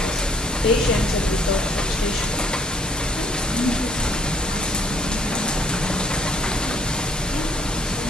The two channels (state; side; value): normal; both; correlation 0.65